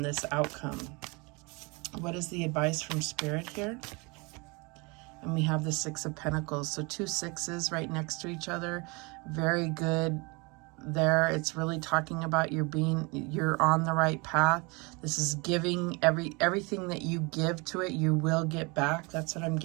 this outcome. What is the advice from Spirit here? And we have the Six of Pentacles. So 2 sixes right next to each other. Very good there. It's really talking about you're on the right path. This is giving everything that you give to it, you will get back. That's what I'm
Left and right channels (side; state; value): left; quieter; 28.3 dB